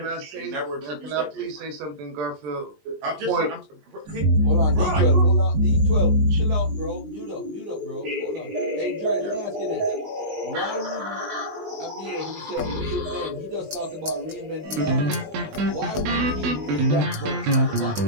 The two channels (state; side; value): late; left; 20 ms